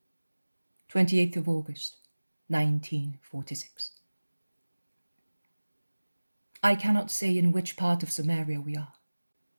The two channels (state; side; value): inverted; both; correlation -1.00